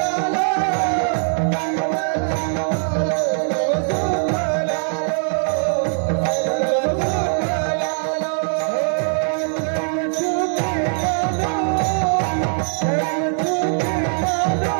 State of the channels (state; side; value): silent; left; 58 dB below the other